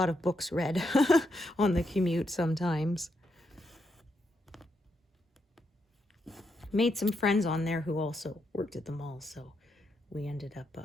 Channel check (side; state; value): both; normal; correlation 0.80